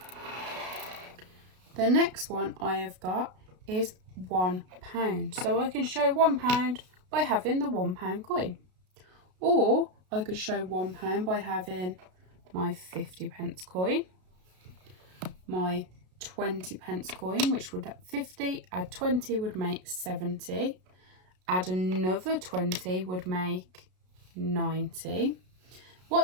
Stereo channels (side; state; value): left; late; 33 ms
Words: The next one I have got is £1. So I can show £1 by having the £1 coin. Or I could show £1 by having my 50 pence coin, my 20 pence coin, which would 50, add 20 would make 70, add another 20 would make 90.